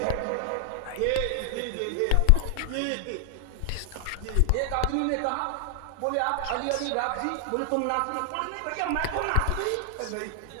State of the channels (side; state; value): both; different; correlation 0.00